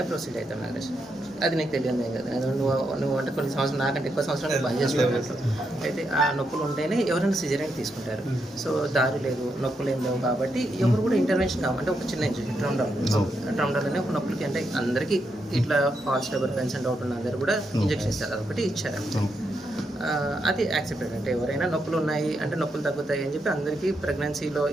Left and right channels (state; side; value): normal; both; correlation 0.82